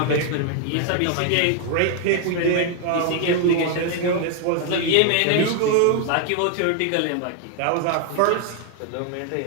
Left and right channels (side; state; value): both; different; correlation 0.00